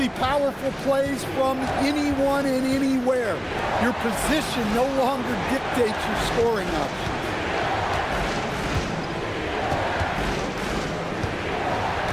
powerful plays from anyone and anywhere. Your position no longer dictates your scoring option.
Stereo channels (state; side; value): identical; both; correlation 1.00